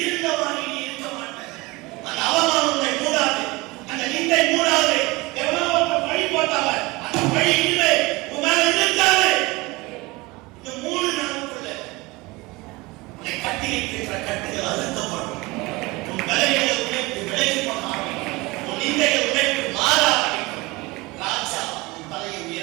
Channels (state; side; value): quieter; left; 23.0 dB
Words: இருந்தவாறு நீ இருக்க மாட்டாய். அந்த அவமானம் உன்னை மூடாது, அந்த நிந்தை மூடாது. எவனோ ஒருத்தன் பழி போட்டாங்க, அந்த பழி இல்லை உன் மேல இருக்காது. இந்த 3 நாளுக்குள்ள உன்னை கட்டி வைத்திருக்கிற கட்டுகள் அழுத்தப்படும், உன் பலவீனங்களை உடைத்து விலகி போக ஆரம்பிக்கும், உன் நிந்தைகளை உடைத்து மாற ஆரம்பிக்கும். ராஜா உன் தலையை